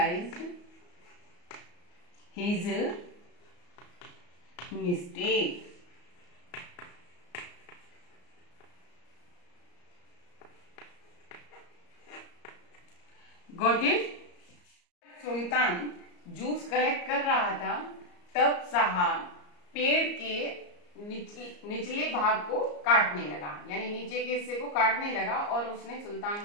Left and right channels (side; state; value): right; late; 34 ms